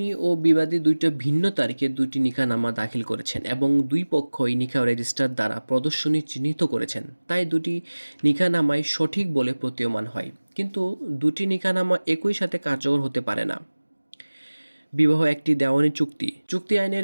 ও বিবাদী দুইটা ভিন্ন তারিখে দুইটি নিকাহনামা দাখিল করেছেন এবং দুই পক্ষই নিকাহ রেজিস্টার দ্বারা প্রদর্শনী চিহ্নিত করেছেন, তাই দুটি নিকাহনামাই সঠিক বলে প্রতীয়মান হয়। কিন্তু দুটি নিকাহনামা একই সাথে কার্যকর হতে পারে না। বিবাহ একটি দেওয়ানি চুক্তি। চুক্তি আইনের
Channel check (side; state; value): both; inverted; correlation -1.00